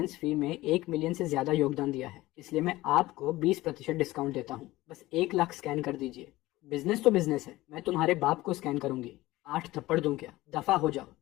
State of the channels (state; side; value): quieter; right; 18.0 dB